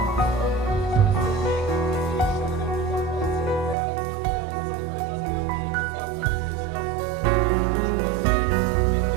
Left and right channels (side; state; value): left; drops out; at 3.8 s